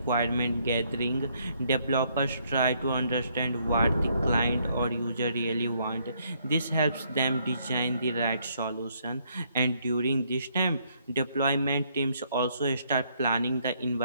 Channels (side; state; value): both; inverted; correlation -0.70